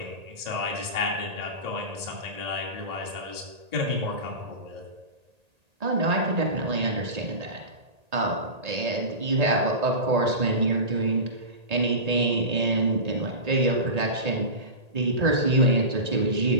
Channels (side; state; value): left; late; 1.8 ms